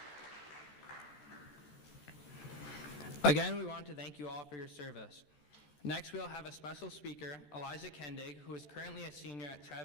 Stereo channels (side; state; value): right; late; 14 ms